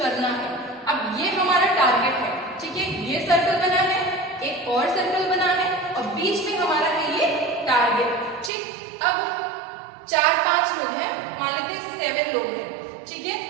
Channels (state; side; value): drops out; left; at 8.5 s